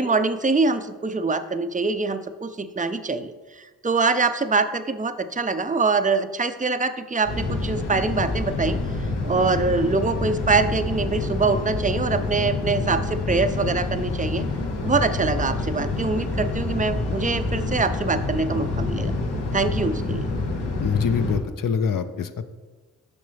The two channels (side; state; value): both; normal; correlation 0.33